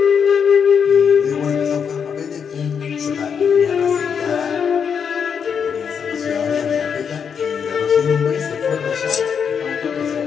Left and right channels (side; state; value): right; quieter; 7.0 dB